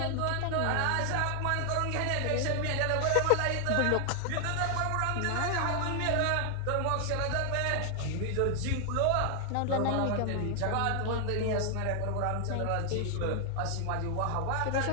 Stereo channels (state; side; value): different; both; correlation 0.00